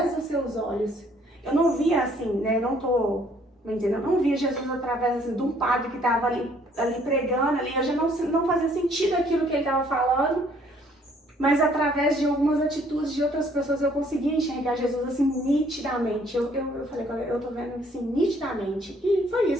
dos seus olhos. Eu não via assim, né? Eu não via Jesus através assim, de um padre que tava ali pregando ali. Eu já não fazia sentido aquilo que ele tava falando. Mas através de algumas atitudes de outras pessoas eu conseguia enxergar Jesus assim nitidamente. Eu falei, eu tô vendo assim nitidamente. E foi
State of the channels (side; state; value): both; normal; correlation 0.62